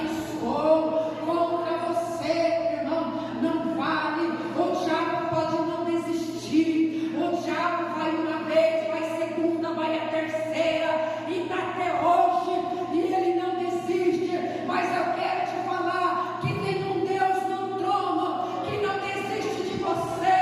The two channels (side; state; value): both; identical; correlation 1.00